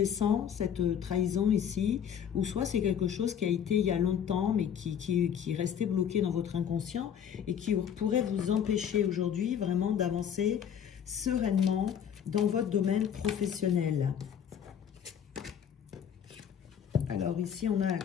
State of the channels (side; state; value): right; quieter; 8.6 dB